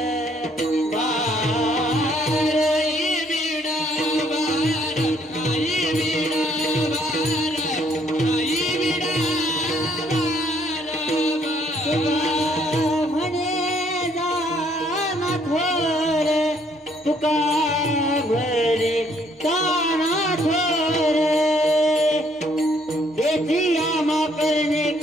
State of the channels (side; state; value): both; normal; correlation 0.66